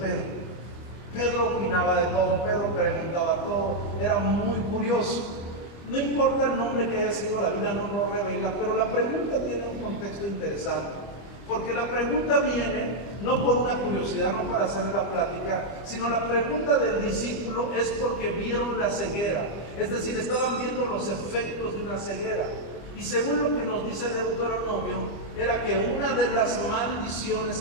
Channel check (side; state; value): right; late; 25 ms